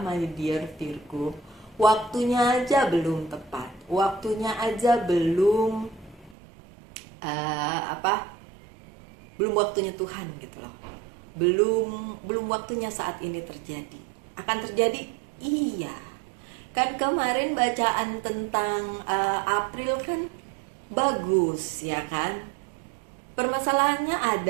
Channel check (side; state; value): left; drops out; at 6.4 s